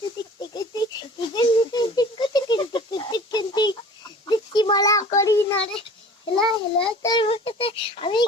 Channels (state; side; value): normal; both; correlation 0.44